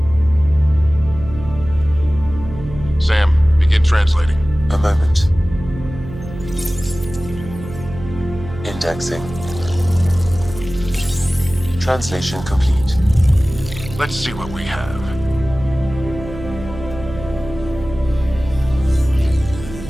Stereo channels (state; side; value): noise; right; hum, 12 dB below the sound